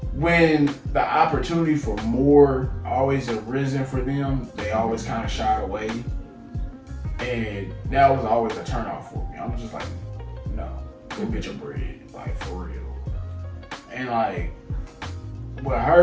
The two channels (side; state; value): both; identical; correlation 1.00